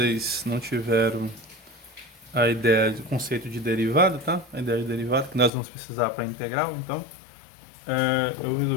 não tiveram a ideia do conceito de derivada, tá? A ideia de derivada que nós vamos precisar para integral, então eu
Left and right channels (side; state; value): right; drops out; at 5.5 s